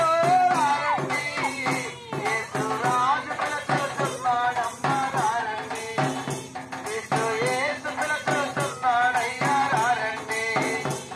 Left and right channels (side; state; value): both; identical; correlation 1.00